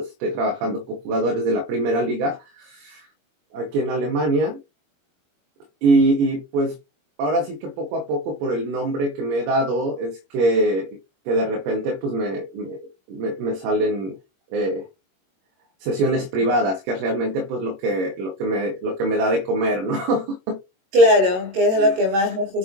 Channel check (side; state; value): left; late; 21 ms